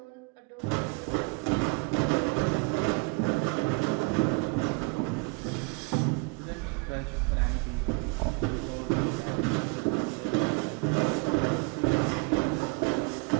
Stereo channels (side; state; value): left; quieter; 30.0 dB